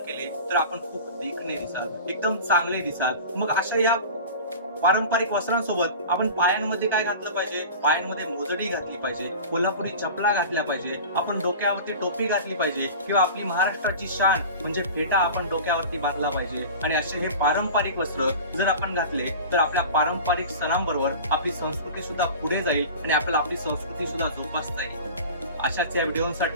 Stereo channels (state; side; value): inverted; both; correlation -0.36